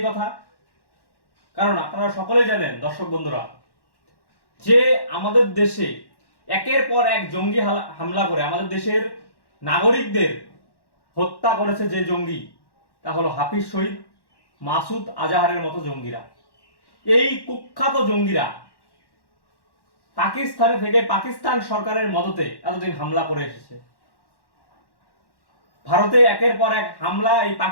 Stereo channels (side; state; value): right; late; 1.1 ms